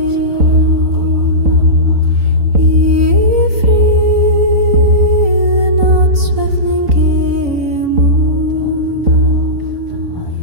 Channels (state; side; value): late; left; 3.9 ms